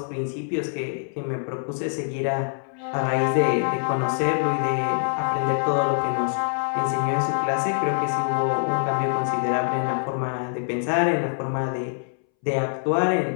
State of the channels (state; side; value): silent; right; 62 dB below the other